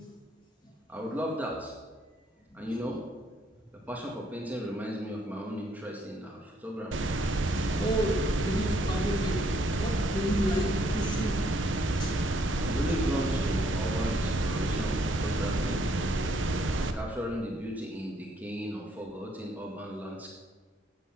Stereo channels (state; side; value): normal; both; correlation 0.69